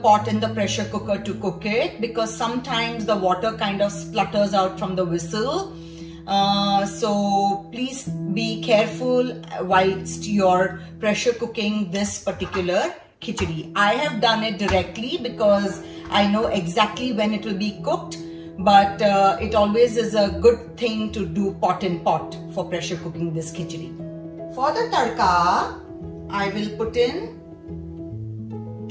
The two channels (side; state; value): both; identical; correlation 1.00